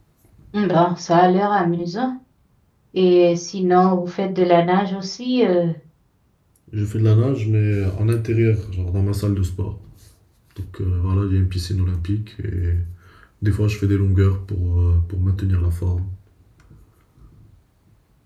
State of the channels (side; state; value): both; identical; correlation 1.00